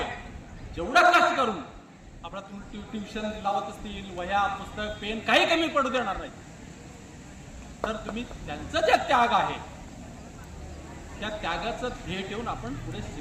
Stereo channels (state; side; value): identical; both; correlation 1.00